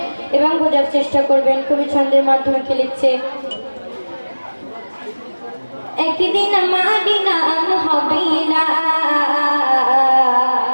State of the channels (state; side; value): inverted; both; correlation -1.00